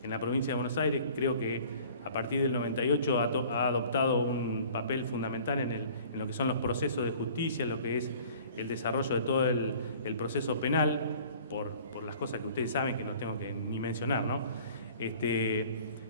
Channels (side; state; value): both; inverted; correlation -0.49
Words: en la provincia de Buenos Aires, creo que a partir del 98 ha adoptado un papel fundamental en lo que son los procesos de justicia, lo que es el desarrollo de todo el proceso penal, por las cosas que ustedes saben que no tengo que ni mencionar, ¿no?